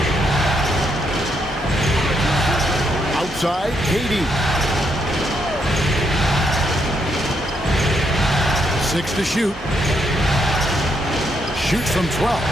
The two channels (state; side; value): normal; both; correlation 0.76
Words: Outside, KD. 6 to shoot. Shoots from 12.